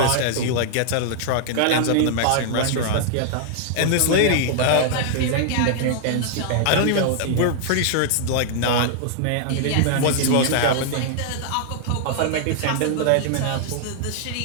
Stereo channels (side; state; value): both; different; correlation -0.01